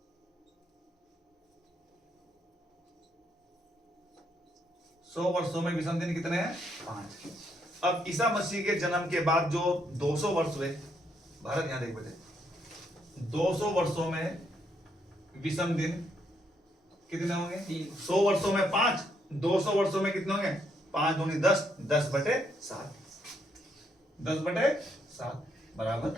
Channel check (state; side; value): normal; both; correlation 0.74